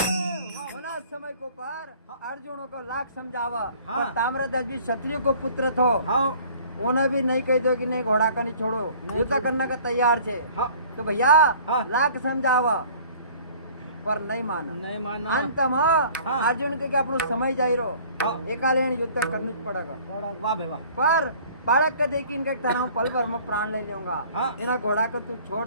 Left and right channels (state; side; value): inverted; both; correlation -0.50